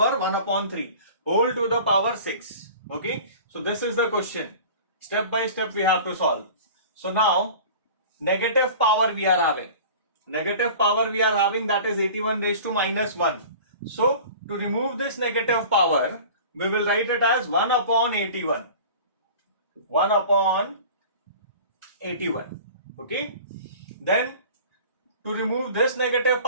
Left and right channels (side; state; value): both; inverted; correlation -0.41